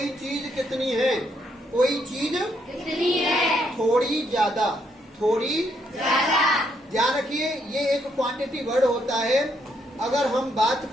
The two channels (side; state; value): both; normal; correlation 0.74